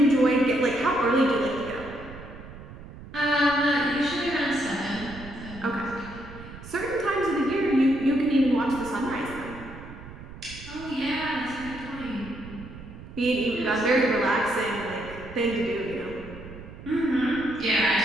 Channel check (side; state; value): right; noise; rumble, 15 dB below the sound